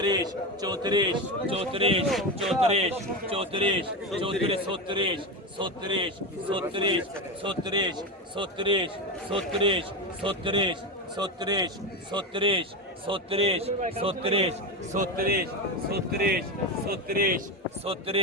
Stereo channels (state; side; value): normal; both; correlation 0.17